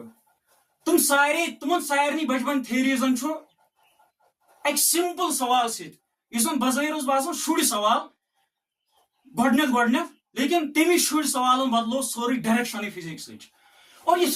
तुम सारे बचपन थ्योरीजन एक सिंपल सवाल सजन बजाहिर बासान शुड़ सवाल गोडनेथ, लेकिन तमी शुड़ सवाल बदलो सोरी डायरेक्शन फिजिक्स। और इस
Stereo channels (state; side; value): identical; both; correlation 1.00